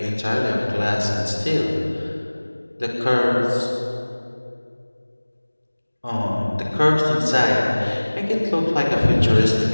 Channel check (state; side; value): inverted; both; correlation -1.00